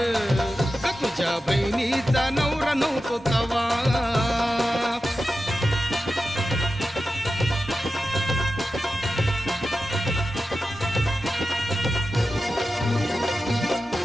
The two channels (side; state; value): both; normal; correlation 0.92